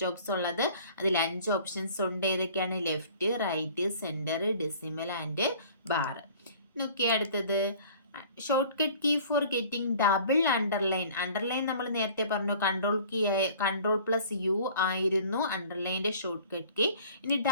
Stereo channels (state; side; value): inverted; both; correlation -0.49